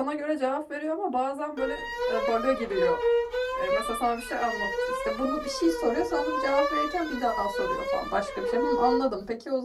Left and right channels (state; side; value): identical; both; correlation 1.00